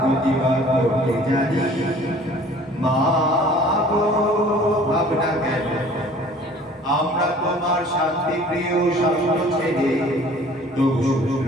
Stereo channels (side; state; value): both; normal; correlation 0.50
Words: করতে জানি মা গো ভাবনা কেন আমরা তোমার শান্তি প্রিয় শান্ত ছেলে তবু